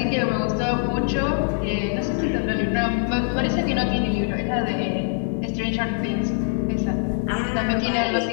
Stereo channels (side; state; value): right; silent; 63 dB below the other